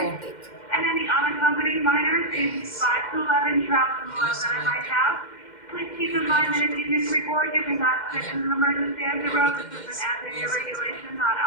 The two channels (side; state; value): right; late; 2.1 ms